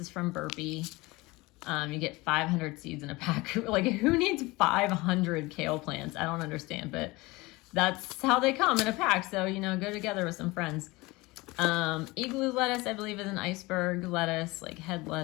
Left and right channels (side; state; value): right; quieter; 22.3 dB